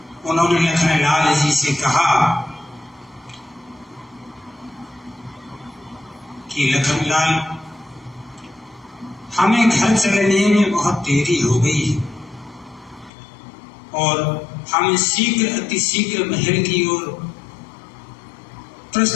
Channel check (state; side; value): drops out; right; at 13.1 s